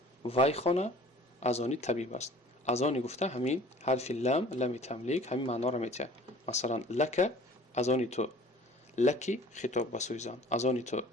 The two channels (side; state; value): both; normal; correlation 0.48